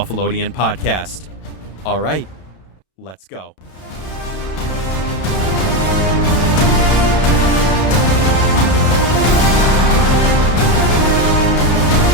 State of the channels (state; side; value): late; right; 32 ms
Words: podcast. All right, let's go.